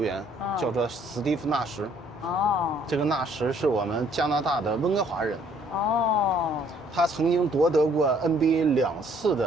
员，叫做史蒂夫·纳什。哦，这个纳什是我们加拿大的温哥华人。哦，他曾经夺得过 NBA 2次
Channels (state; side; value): normal; both; correlation 0.62